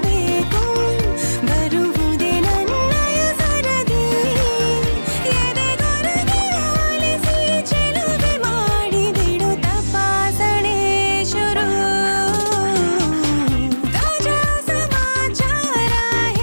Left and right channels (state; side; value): inverted; both; correlation -1.00